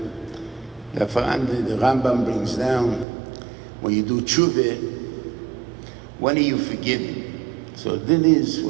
that the Rambam brings down, when you do tshuva, when are you forgiven? So then is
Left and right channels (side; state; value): left; drops out; at 3.1 s